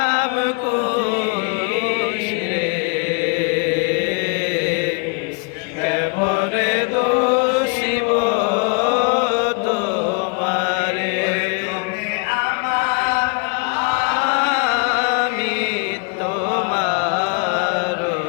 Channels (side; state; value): right; quieter; 35.3 dB